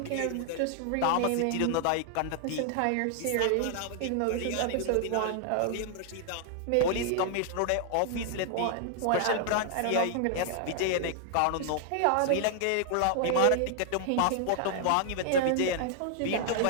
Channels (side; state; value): both; different; correlation 0.00